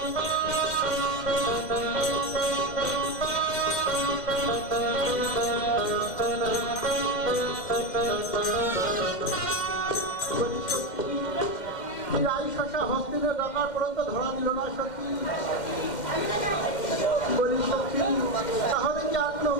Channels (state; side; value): late; right; 2.1 ms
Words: হস্তিনে ডাকার পর্যন্ত ধরা দিল না সখী। বলি সখী তাহলে কি আর কোনো